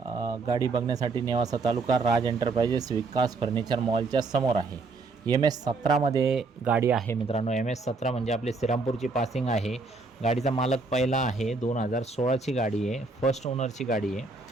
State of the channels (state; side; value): quieter; left; 3.8 dB